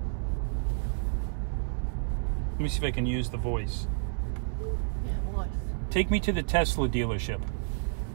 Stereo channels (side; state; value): left; silent; 58 dB below the other